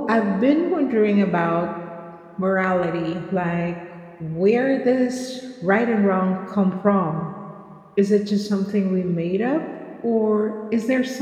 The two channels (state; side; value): identical; both; correlation 1.00